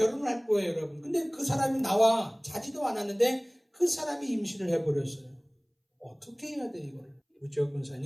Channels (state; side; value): identical; both; correlation 1.00